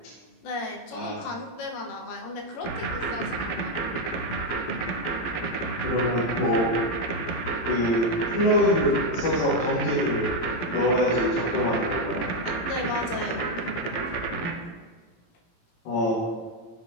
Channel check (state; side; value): late; right; 18 ms